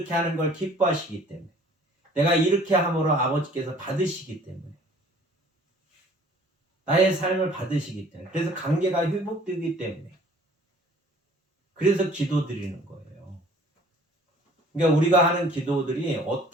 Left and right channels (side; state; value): both; normal; correlation 0.53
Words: 하는 걸 기뻐하시기 때문에. 내가 이렇게 함으로 아버지께서 받으시기 때문에. 나의 삶을 받으시기 때문에. 그래서 관계가 회복되기 때문에. 그래서 기도드리는 거예요. 그러니까 우리가 하는 기도들이